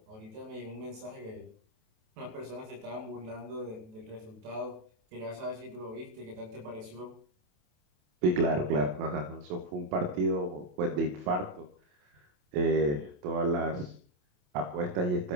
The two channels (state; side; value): late; left; 28 ms